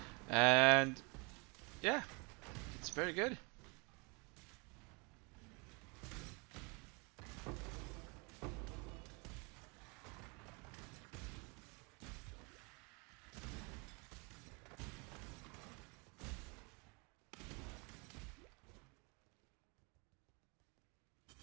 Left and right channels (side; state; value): left; quieter; 30.8 dB